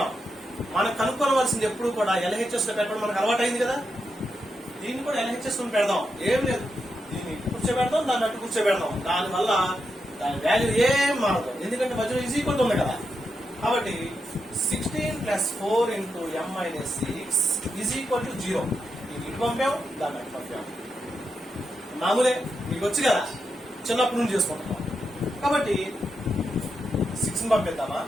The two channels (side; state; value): both; normal; correlation 0.85